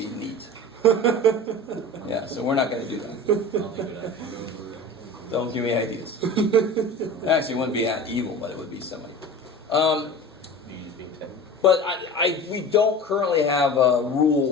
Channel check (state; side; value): normal; both; correlation 0.35